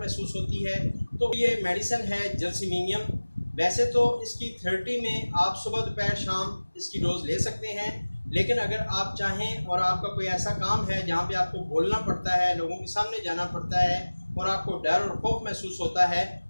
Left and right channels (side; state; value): both; inverted; correlation -1.00